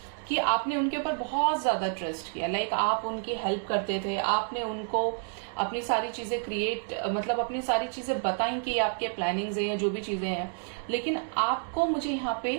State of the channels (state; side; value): silent; left; 58 dB below the other